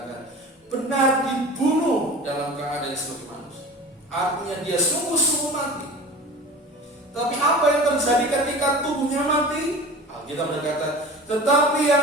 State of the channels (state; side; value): normal; both; correlation 0.37